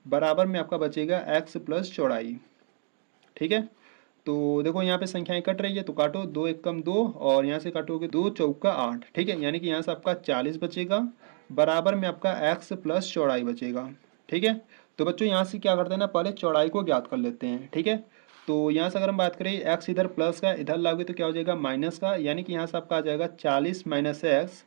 बराबर में आपका बचेगा x प्लस चौड़ाई। ठीक है, तो देखो यहाँ पे संख्याएं कट रही है तो काटो, 2 एकम 2 और यहाँ से काटोगे 2 चौका 8। ठीक है, यानी कि यहाँ से आपका 40 बचेगा, बराबर में आपका x प्लस चौड़ाई बचेगा। ठीक है, तो बच्चों यहाँ से क्या करते हैं ना, पहले चौड़ाई को ज्ञात कर लेते हैं। ठीक है, तो यहाँ से अगर हम बात करें x इधर प्लस का, इधर लाओगे तो क्या हो जाएगा माइनस का, यानी कि यहाँ से आपका आ जाएगा 40 माइनस x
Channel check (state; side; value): silent; left; 59 dB below the other